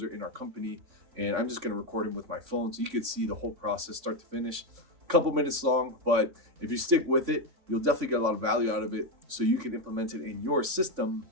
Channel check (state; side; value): late; left; 3.6 ms